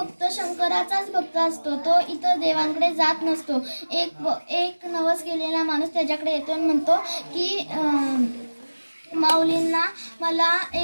शंकराचाच भक्त असतो. तो इतर देवांकडे जात नसतो. एक नवस गेलेला माणूस त्याच्याकडे येतो आणि म्हणतो की माऊलींना मला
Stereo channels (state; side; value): inverted; both; correlation -1.00